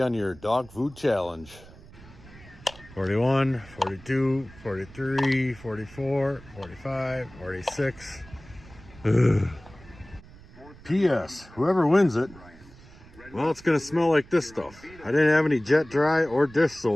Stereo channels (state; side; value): noise; right; rumble, 21 dB below the sound